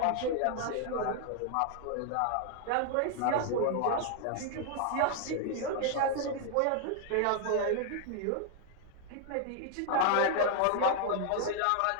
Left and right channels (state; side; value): different; both; correlation 0.00